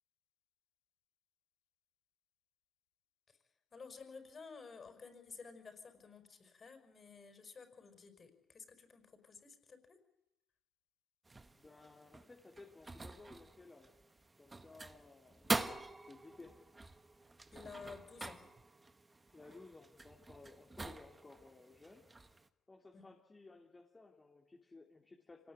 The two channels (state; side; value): normal; both; correlation 0.95